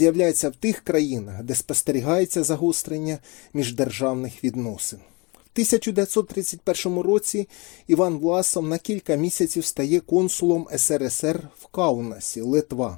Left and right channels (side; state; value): right; quieter; 27.8 dB